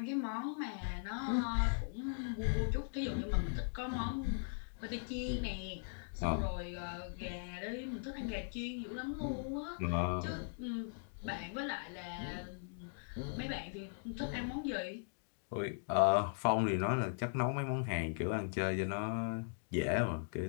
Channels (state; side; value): silent; right; digital silence